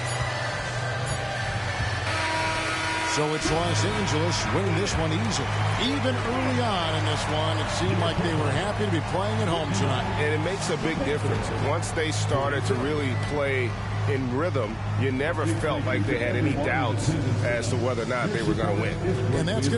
So it's Los Angeles winning this one easily. Even early on in this one, it seemed like they were happy to be playing at home tonight. And it makes a big difference. Once they started to really play in rhythm, you never felt like they had any doubts as to whether or not they were going to win. And that's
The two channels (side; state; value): both; identical; correlation 1.00